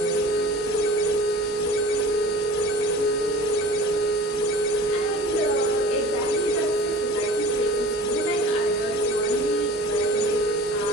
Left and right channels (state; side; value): normal; both; correlation 0.42